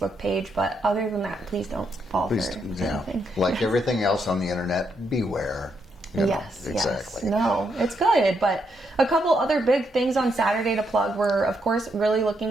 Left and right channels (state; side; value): normal; both; correlation 0.78